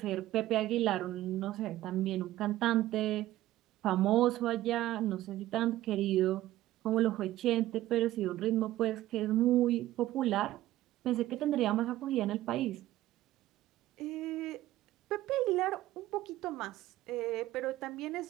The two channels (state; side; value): quieter; left; 15.1 dB